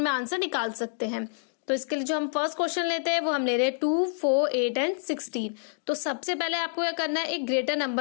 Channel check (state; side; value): silent; right; digital silence